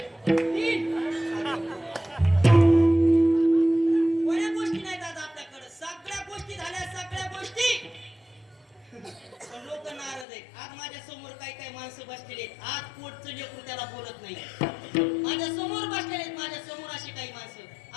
कोण्या गोष्टी नाहीत आज आपल्याकडे, सगळ्या गोष्टी झाल्या, सगळ्या गोष्टी. पण लोक नाराज आहेत. आज माझ्या समोर काही माणसं बसलेले आहेत, आज पोटचं लेकरू त्याला बोलत नाही. माझ्या समोर बसलेले आहेत, माझ्या समोर अशी काही माणसं,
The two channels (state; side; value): drops out; right; at 10.2 s